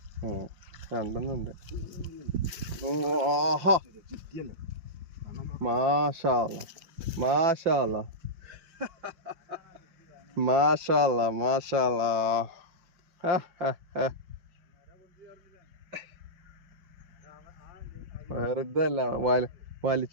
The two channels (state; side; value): late; left; 5.6 ms